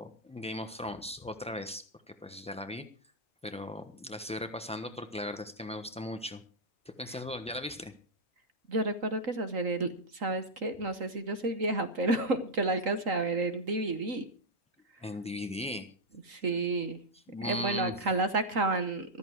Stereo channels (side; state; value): both; normal; correlation -0.02